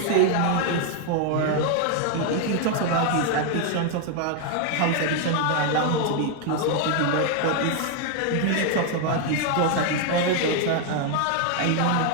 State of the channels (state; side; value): different; both; correlation 0.01